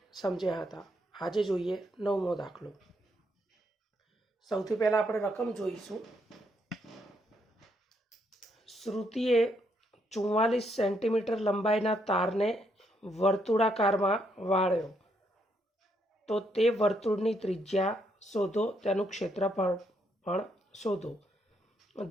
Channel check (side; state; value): both; normal; correlation 0.75